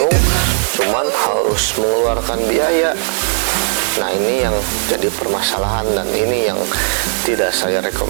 cuman harus mengeluarkan biaya. Nah, ini yang jadi permasalahan dan ini yang tidak saya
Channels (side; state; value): left; silent; 66 dB below the other